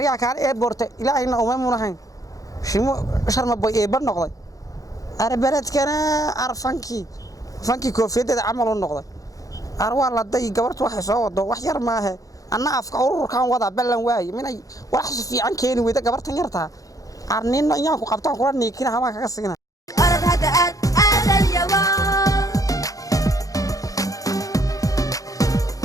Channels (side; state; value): right; late; 0.17 ms